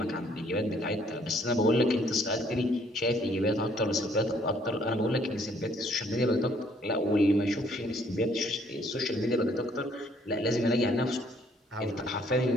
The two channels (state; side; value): normal; both; correlation 0.64